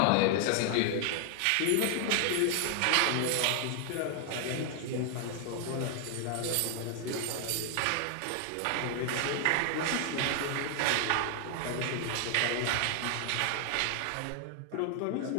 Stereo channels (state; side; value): different; both; correlation 0.00